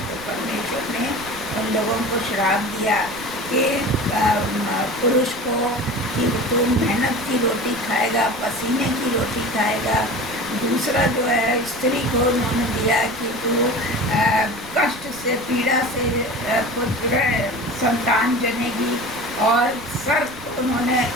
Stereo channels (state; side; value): noise; right; rumble, 19 dB below the sound